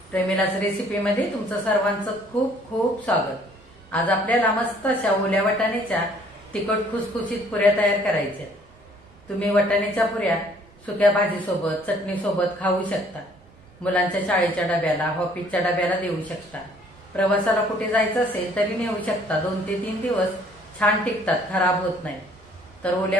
प्रेमिलाच रेसिपीमध्ये तुमचं सर्वांचं खूप खूप स्वागत. आज आपल्याला मस्त अशा ओल्या वाटाण्याच्या तिखट खुसखुशीत पुऱ्या तयार करायच्या. तुम्ही वाटाण्याच्या पुऱ्या सुक्या भाजीसोबत चटणीसोबत खाऊ शकता. मुलांच्या शाळेच्या डब्याला ऑफिसच्या डब्याला देऊ शकता. प्रवासाला कुठे जायचं असेल तरी नेऊ शकता. 2 ते 3 दिवस छान टिकतात, खराब होत नाही. तर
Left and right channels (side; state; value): both; normal; correlation 0.59